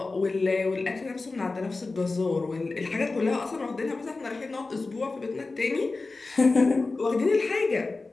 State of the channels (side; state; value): right; quieter; 3.6 dB